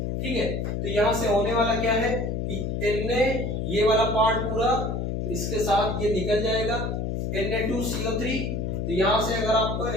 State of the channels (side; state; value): left; noise; hum, 2 dB below the sound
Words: ठीक है। तो यहां से होने वाला क्या है कि Na ये वाला पार्ट पूरा इसके साथ ये निकल जाएगा, Na2CO3। तो यहां से अगर आपको